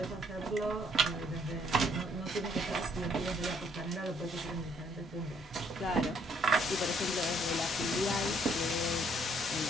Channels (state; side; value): normal; both; correlation 0.67